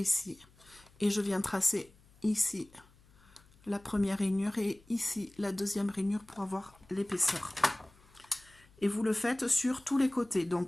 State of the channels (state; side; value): noise; left; hum, 28 dB below the sound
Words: et je viens tracer ici la première rainure et ici la deuxième rainure pour avoir l'épaisseur. Et vous le faites sur tous les côtés.